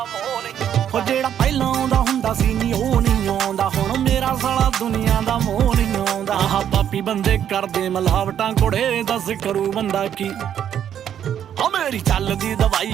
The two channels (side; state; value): left; quieter; 9.6 dB